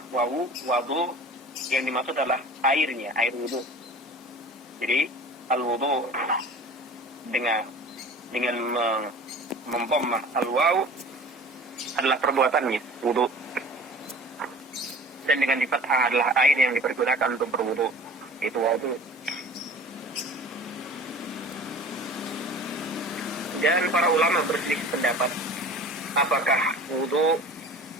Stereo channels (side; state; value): both; normal; correlation 0.42